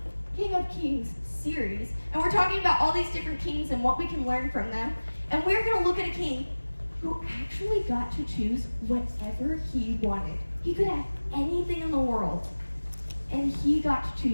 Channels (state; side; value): inverted; both; correlation -1.00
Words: King of Kings series. And we're talking about all these different kings and what we can learn from them. And we're going to look at a king who actually got to choose whatever he wanted. He could have anything in the world, and he got to